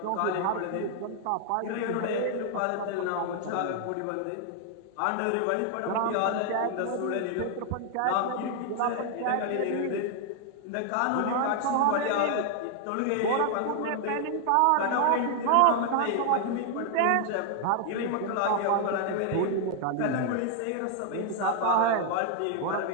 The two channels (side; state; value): both; different; correlation 0.00